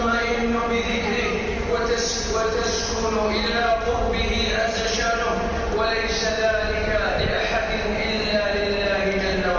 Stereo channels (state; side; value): identical; both; correlation 1.00